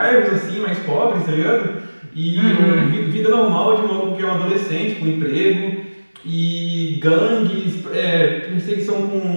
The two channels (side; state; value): both; inverted; correlation -1.00